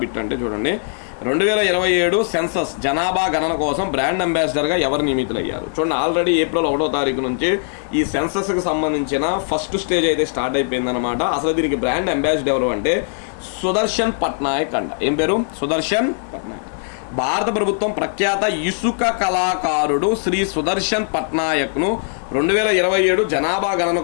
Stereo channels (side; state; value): right; silent; digital silence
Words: బిట్ అంటే చూడండి, 2027 సెన్సస్ జనాభా గణన కోసం బ్రాండ్ అంబాసిడర్గా ఎవరు నియమితులయ్యారు? చూడండి, ఆల్రెడీ ఏప్రిల్ 1వ తారీఖు నుంచి ఈ సెన్సస్కి సంబంధించిన ఫస్ట్ స్టేజ్ అయితే స్టార్ట్ అయిపోయిందనమాట. అసలు దీనికి బ్రాండ్ అంబాసిడర్ ఎవరు అంటే సుదర్శన్ పట్నాయక్ అంట. ఏం పేరు? సుదర్శన్ పట్నాయక్. భారత ప్రభుత్వం ప్రఖ్యాత ఇసుక కళాకారుడు శ్రీ సుదర్శన్ పట్నాయక్ను 2027 జనాభా గణన